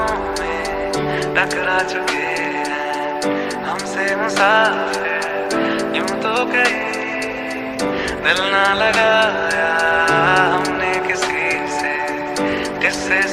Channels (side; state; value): both; identical; correlation 1.00